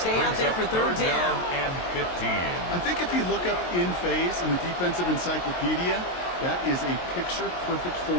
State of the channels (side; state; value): right; late; 23 ms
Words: out there for 3rd down. And 15. I think if you look up in phase in the defensive encyclopedia, that is a picture-perfect